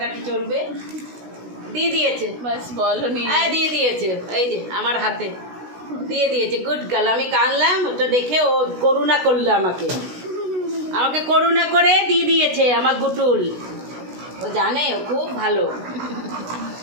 চলবে। দিয়ে দিয়েছে, বাস বলো নি। হ্যাঁ দিয়ে দিয়েছে। এই যে আমার হাতে দিয়ে দিয়েছে। Good girl. আমি কানলাম, ওটা দেখে ও করুণা করলো আমাকে করুণা করে দিয়ে দিয়েছে আমার গুটুল। ও জানে ও খুব ভালো,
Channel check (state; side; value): late; left; 16 ms